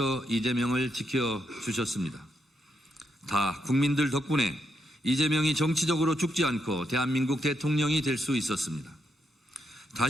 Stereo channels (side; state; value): both; normal; correlation 0.80